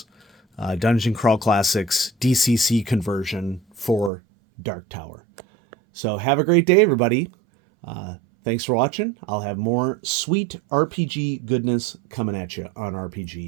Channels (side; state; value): left; drops out; at 4.1 s